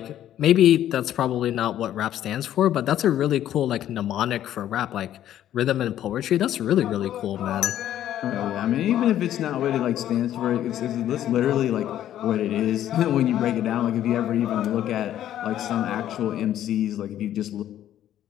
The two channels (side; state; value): right; quieter; 11.7 dB